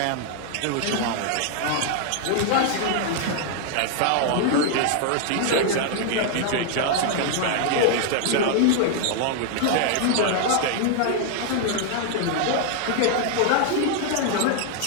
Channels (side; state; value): both; different; correlation 0.00